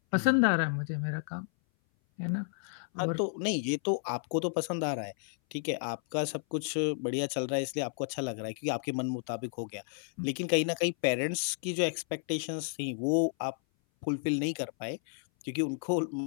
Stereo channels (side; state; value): right; silent; 56 dB below the other